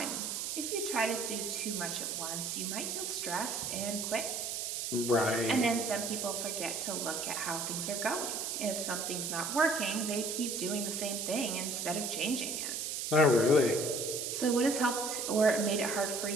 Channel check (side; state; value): right; noise; hiss, 3 dB below the sound